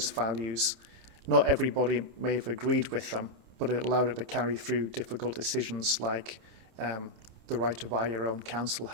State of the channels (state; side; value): late; left; 30 ms